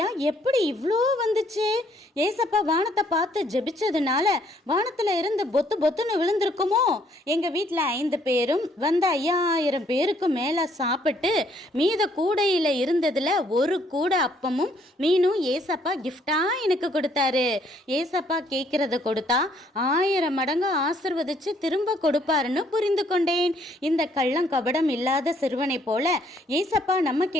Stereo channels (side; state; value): both; normal; correlation 0.66